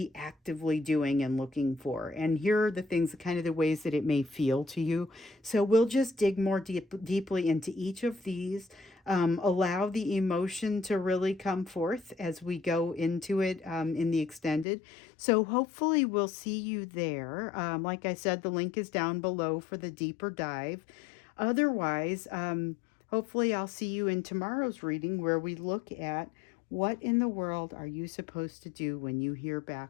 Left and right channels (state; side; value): drops out; right; at 14.7 s